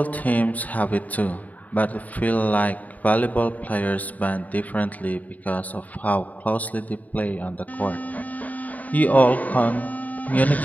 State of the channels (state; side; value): late; right; 0.075 ms